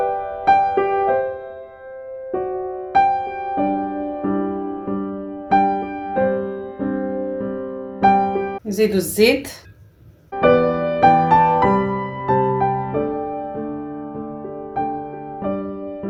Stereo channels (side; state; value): both; identical; correlation 1.00